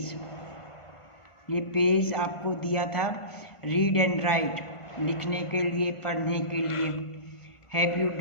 ये पेज आपको दिया था रीड एंड राइट, लिखने के लिए, पढ़ने के लिए। Have you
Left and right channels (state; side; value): late; right; 1.4 ms